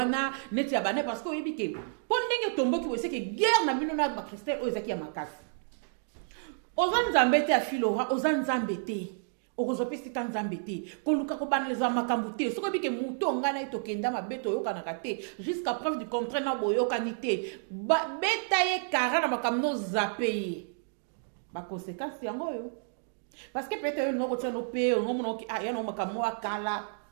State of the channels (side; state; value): left; silent; digital silence